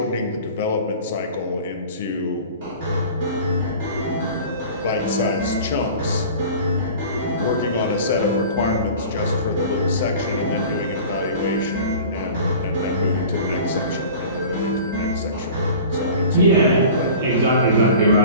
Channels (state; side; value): inverted; both; correlation -0.41